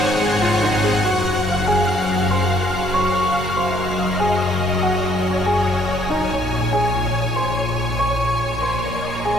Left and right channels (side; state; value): both; normal; correlation 0.65